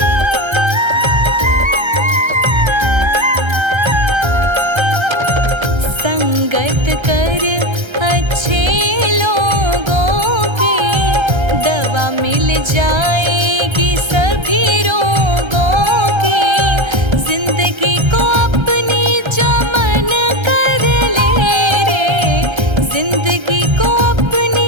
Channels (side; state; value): left; late; 1.3 ms